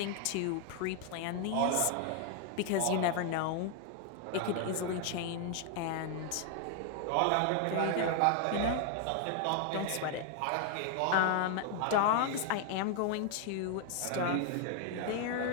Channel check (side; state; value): both; different; correlation 0.00